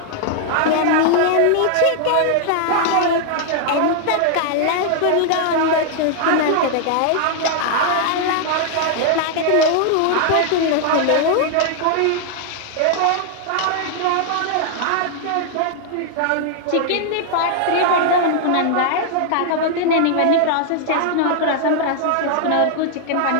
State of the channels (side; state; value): both; different; correlation 0.00